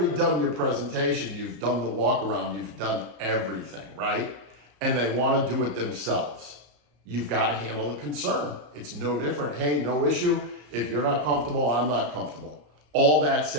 done your presentation. You've done the walk around. You've done everything, right? And they want to do it themselves. You've got to handle the concern. It's no different. Hey, no issue. If you're not comfortable, I'm not comfortable. All that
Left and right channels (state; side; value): late; left; 34 ms